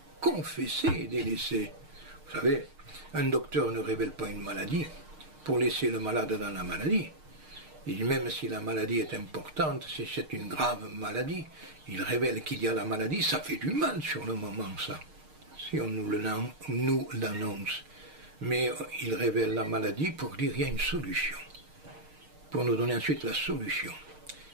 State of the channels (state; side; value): late; left; 6.5 ms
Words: confesser et délaisser. Vous savez, un docteur ne révèle pas une maladie pour laisser le malade dans la maladie. Et même si la maladie est importante, si c'est une grave maladie, il révèle qu'il y a la maladie, ça fait du mal sur le moment, ça. Si on nous l'annonce. Mais il révèle la maladie pour dire qu'il y a une solution. Pour nous donner ensuite la solution.